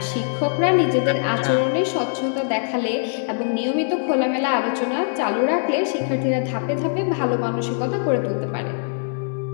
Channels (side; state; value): right; silent; digital silence